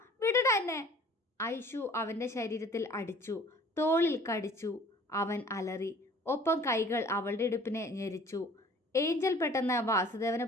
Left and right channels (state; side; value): normal; both; correlation 0.50